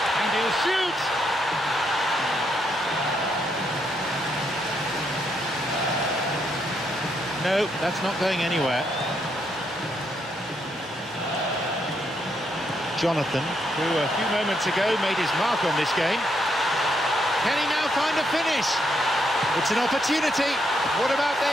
and he'll shoot! No, that's not going anywhere. Jonathan, who a few moments ago made his mark on this game. Can he now find a finish? It's an opportunity. What about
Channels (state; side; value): normal; both; correlation 0.77